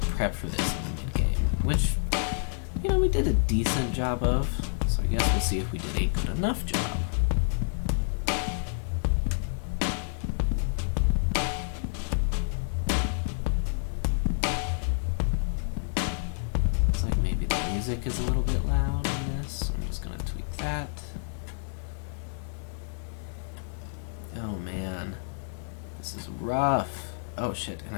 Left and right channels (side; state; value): right; silent; digital silence